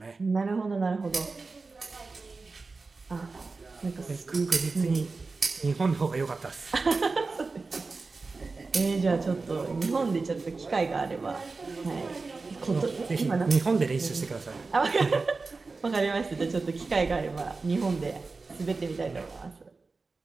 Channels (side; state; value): left; quieter; 4.0 dB